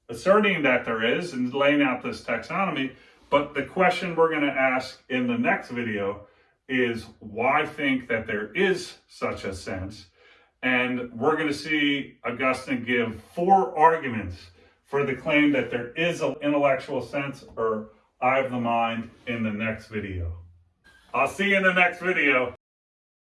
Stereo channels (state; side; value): identical; both; correlation 1.00